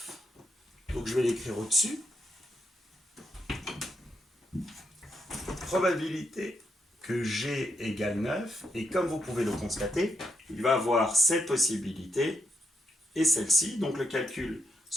Donc je vais l'écrire au-dessus. Probabilité que g égale 9. Et comme vous pouvez le constater, il va avoir cette possibilité et celle-ci. Donc le calcul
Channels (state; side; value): normal; both; correlation 0.79